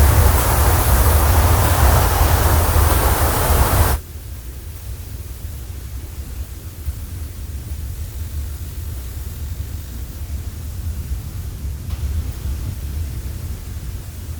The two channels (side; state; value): both; identical; correlation 1.00